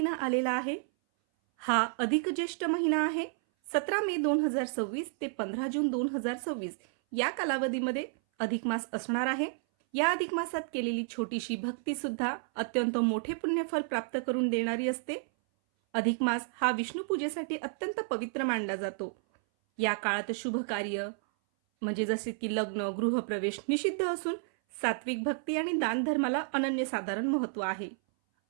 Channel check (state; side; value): silent; left; 57 dB below the other